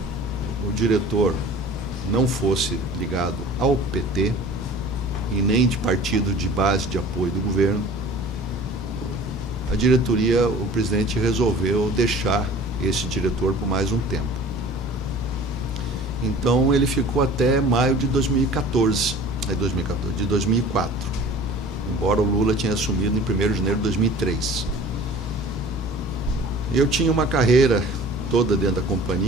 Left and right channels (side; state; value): both; normal; correlation 0.44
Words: o diretor não fosse ligado ao PT e nem de partido de base de apoio do governo, a diretoria, o presidente resolveu deixar esse diretor por mais um tempo. Então ele ficou até maio de 2014, de 2004, embora o Lula tinha assumido em 1º de janeiro de 2003. Eu tinha uma carreira toda dentro da